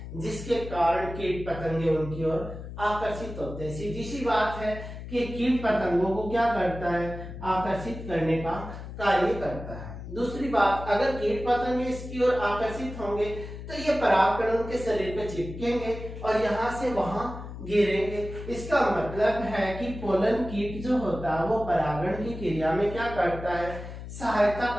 जिसके कारण कीट पतंगे उनकी ओर आकर्षित होते हैं। सीधी सी बात है कि कीट पतंगों को क्या करता है, आकर्षित करने का कार्य करता है। दूसरी बात, अगर कीट पतंगे इसकी ओर आकर्षित होंगे तो ये परागकण उनके शरीर पे चिपकेंगे और यहाँ से वहां गिरेंगे। इसका मतलब है कि पोलन कीट जो होता है वो परागण की क्रिया में क्या करता है, सहायता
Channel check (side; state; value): left; noise; hum, 10 dB below the sound